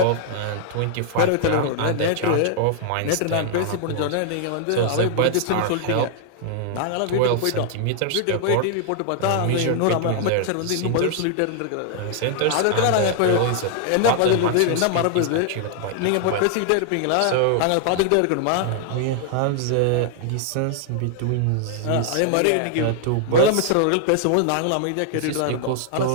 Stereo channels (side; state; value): both; different; correlation 0.00